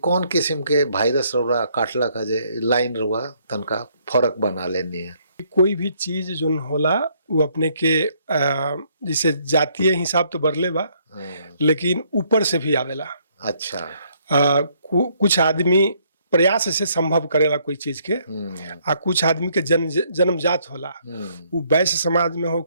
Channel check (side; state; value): both; inverted; correlation -0.68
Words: किस्म के वायरस रउरा काटला का जे लाइन रउआ तनका फर्क बना लेनी है? कोई भी चीज जो होला वो अपने के जैसे जातीय हिसाब तो बरले बा, लेकिन ऊपर से भी आवेला। अच्छा। कुछ आदमी प्रयास से संभव करेला कोई चीज के, आ कुछ आदमी के जन्मजात होला। वो वैश्य समाज में